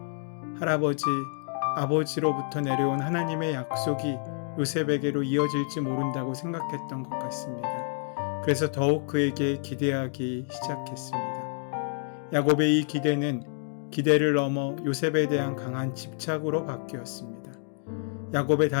할아버지, 아버지로부터 내려온 하나님의 약속이 요셉에게로 이어질지 모른다고 생각했던 것 같습니다. 그래서 더욱 그에게 기대하기 시작했습니다. 야곱의 이 기대를 넘어 요셉에 대한 강한 집착으로 바뀌었습니다. 야곱의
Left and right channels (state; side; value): silent; right; 57 dB below the other